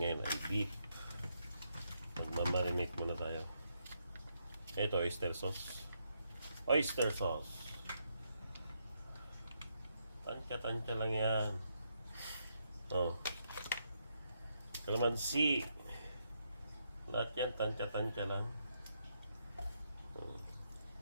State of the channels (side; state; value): both; inverted; correlation -0.79